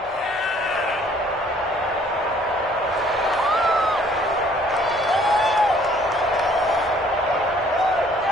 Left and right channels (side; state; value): both; normal; correlation 0.59